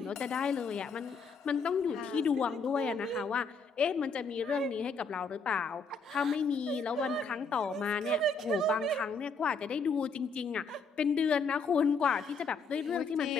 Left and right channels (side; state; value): right; quieter; 4.3 dB